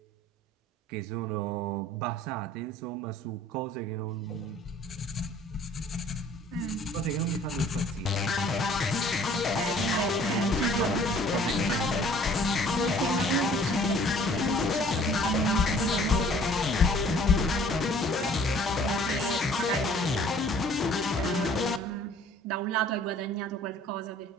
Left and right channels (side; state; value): both; normal; correlation 0.54